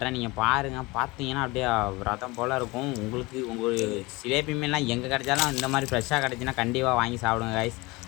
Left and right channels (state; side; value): quieter; right; 23.2 dB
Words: நீங்கள் பாருங்கள், பார்த்தீங்கன்னா அப்படியே ரதம் போல் இருக்கும். உங்கள் சிலேபி மீன்லாம் எங்கே கிடைச்சாலும் இந்த மாதிரி ஃப்ரெஷ்ஷாக கிடச்சின்னா கண்டிப்பாக வாங்கி சாப்பிடுங்க கைஸ்.